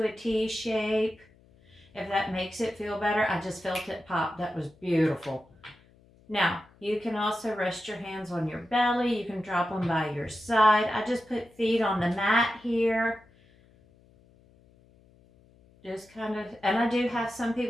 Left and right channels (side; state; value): left; noise; hum, 29 dB below the sound